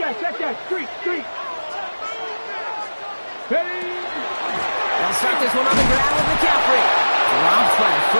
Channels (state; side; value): inverted; both; correlation -1.00